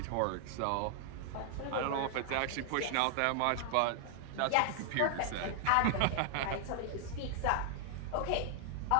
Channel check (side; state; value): both; different; correlation 0.00